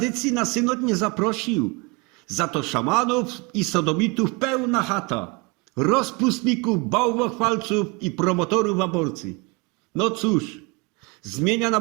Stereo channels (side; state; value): left; quieter; 27.6 dB